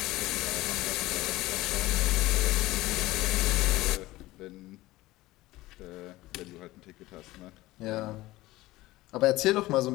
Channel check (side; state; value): right; quieter; 18.2 dB